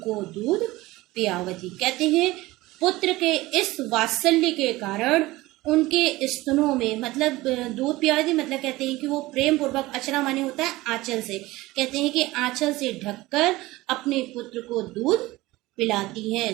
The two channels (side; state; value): left; quieter; 19.1 dB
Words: को दूध पियावती। कहते हैं पुत्र के इस वात्सल्य के कारण उनके स्तनों में, मतलब दूध पियावती मतलब कहते हैं कि वो प्रेम पूर्वक, अचरा माने होता है आंचल से, कहते हैं कि आंचल से ढककर अपने पुत्र को दूध पिलाती हैं।